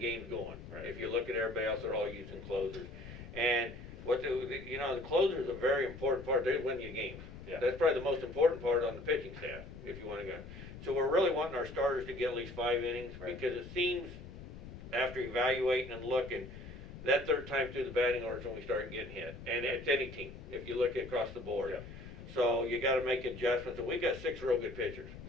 game's going. Right. If you look at everybody else, they're all using closers. And the closer is a very important part. They win you games. Yeah. That's probably the most important part on the pitching staff, if you want to go. So we're really wanting our starters to get at least 5 innings, Right. because it seems, after evaluating and looking, that third time through the batting order is when we start getting hit. And it's any team, if you look across the board. Yeah. So you got to make adjustments. And we've got 6 real good pitchers.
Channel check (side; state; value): left; noise; rumble, 13 dB below the sound